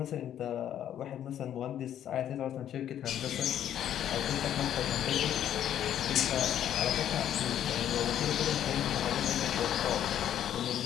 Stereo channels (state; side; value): quieter; right; 10.6 dB